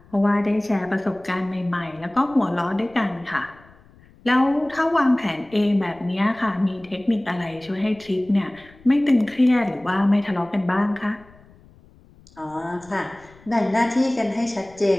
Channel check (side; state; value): left; noise; rumble, 26 dB below the sound